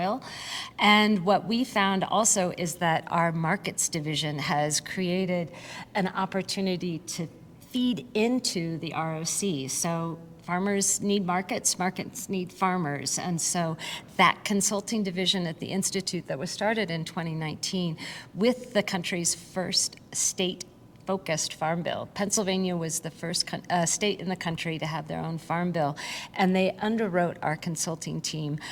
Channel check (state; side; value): identical; both; correlation 1.00